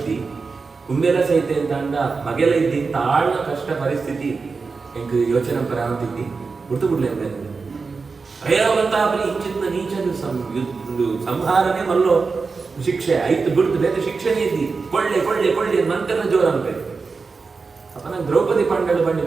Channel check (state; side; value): quieter; left; 4.6 dB